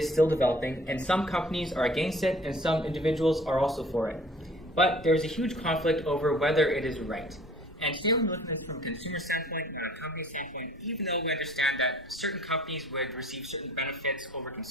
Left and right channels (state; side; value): normal; both; correlation 0.51